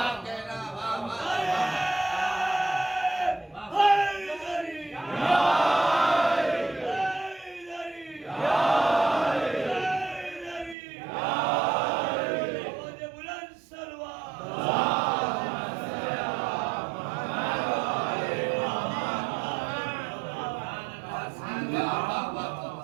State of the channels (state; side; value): drops out; left; at 10.8 s